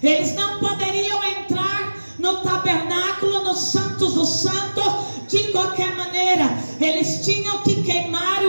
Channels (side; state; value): both; inverted; correlation -1.00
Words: Eles não poderiam entrar no tabernáculo, no Santos dos Santos, de qualquer maneira. Eles tinham que queimar